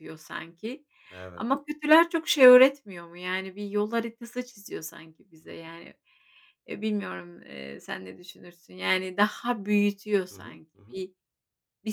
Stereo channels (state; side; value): identical; both; correlation 1.00